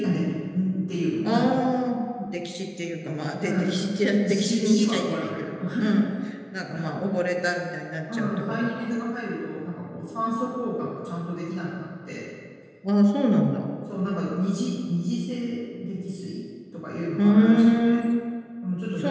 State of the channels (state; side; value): identical; both; correlation 1.00